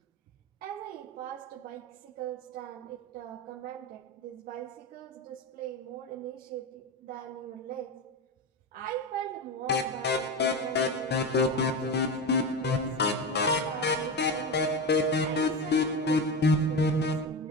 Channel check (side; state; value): both; normal; correlation 0.20